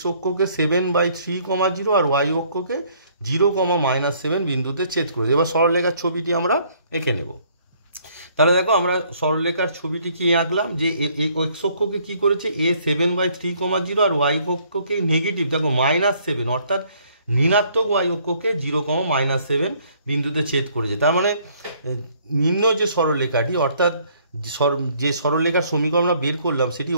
অক্ষকে 7/3, 0 আর y অক্ষকে 0, -7 বিন্দুতে ছেদ করেছে। এবার সরলরেখার ছবিটি আমরা এঁকে নেব। তাহলে দেখো আমরা সরলরেখার ছবিটি কি আঁকলাম, যে এক্স অক্ষকে কি করেছে a 7/3, 0 আর ওয়াই অক্ষকে নেগেটিভ দেখো -7 অর্থাৎ ঋণাত্মক ওয়াই অক্ষকে 0, -7 বিন্দুতে ছেদ করেছে। তার মানে নিম্ন যে সরলরেখাটি অর্থাৎ যে সরলরেখার সমীকরণ আমরা বের করলাম সেটি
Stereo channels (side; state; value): both; inverted; correlation -0.63